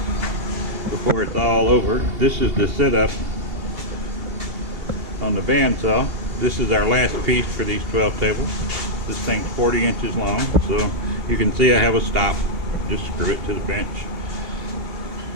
before it's all over, this is the setup on the bandsaw. This is our last piece for these 12 tables. This thing's 40 inches long, so you can see I have a stop. Just screw it to the bench.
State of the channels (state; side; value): late; left; 2.8 ms